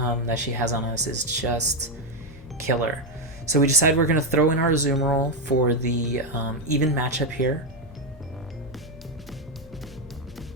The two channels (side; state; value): both; normal; correlation 0.05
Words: she has on us is just killer. So we decide we're going to throw in our Azumarill for the even matchup here.